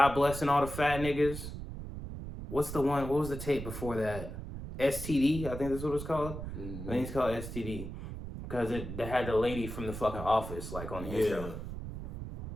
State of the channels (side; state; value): right; noise; rumble, 8 dB below the sound